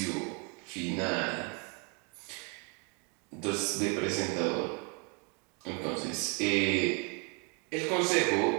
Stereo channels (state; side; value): quieter; left; 34.5 dB